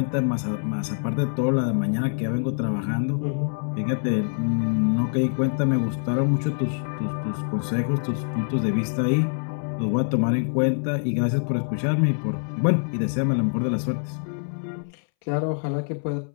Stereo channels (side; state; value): right; silent; 62 dB below the other